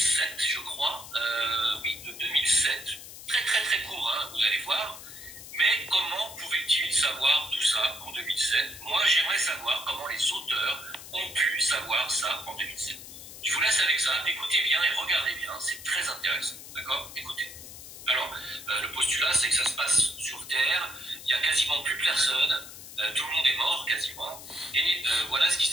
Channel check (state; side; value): noise; left; hiss, 14 dB below the sound